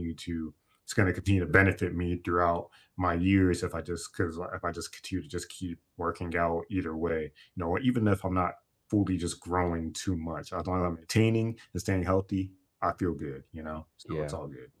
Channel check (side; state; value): both; identical; correlation 1.00